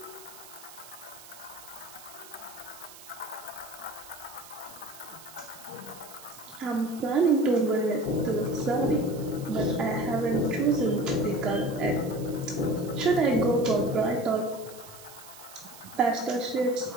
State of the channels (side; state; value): right; noise; hiss, 18 dB below the sound